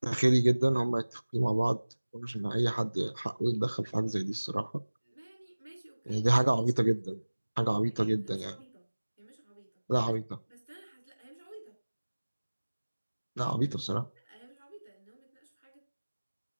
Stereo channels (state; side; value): inverted; both; correlation -1.00